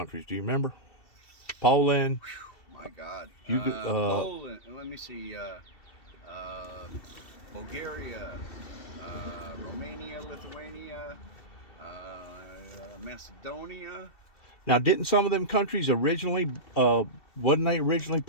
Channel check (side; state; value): right; late; 2.7 ms